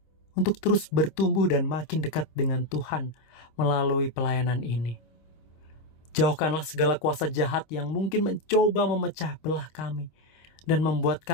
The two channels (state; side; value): late; right; 25 ms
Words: untuk terus bertumbuh dan makin dekat dengan Tuhan melalui pelayanan ini. Jauhkanlah segala kuasa jahat yang mungkin mencoba memecah belah kami dan membuat